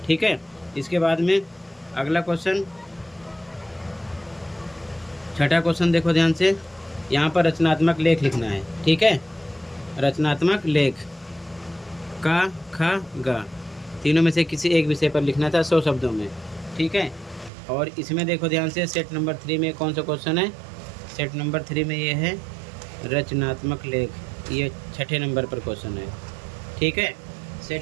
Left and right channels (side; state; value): left; drops out; at 17.5 s